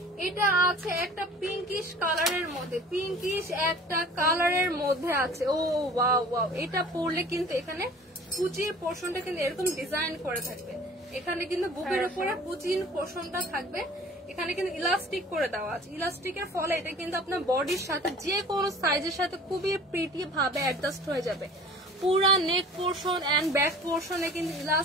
এটা আছে একটা পিঙ্কিশ কালারের মধ্যে, পিঙ্কিশ একটা কালারের মধ্যে আছে। ও ওয়াও ওয়াও, এটা পরলে কিন্তু এখানে কুচির পোর্শনটা কিন্তু এরকম ডিজাইন করে থাকবে, এখানে কিন্তু বুকের উপরে কুচির পোর্শনটা থাকবে। এখানে কিন্তু ইলাস্টিক করে দেওয়া আছে। ইলাস্টিকের ফলে এটা কিন্তু আপনার বডির সাথে যে কোনো সাইজের সাথে খুবই প্রিটি ভাবে অ্যাডজাস্ট হয়ে যাবে। পুরা নেক পোর্শন এন্ড ব্যাক পোর্শনে কিন্তু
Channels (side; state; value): both; normal; correlation 0.45